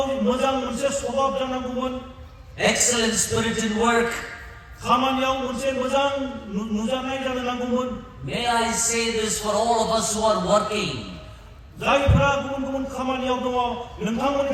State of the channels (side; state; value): both; identical; correlation 1.00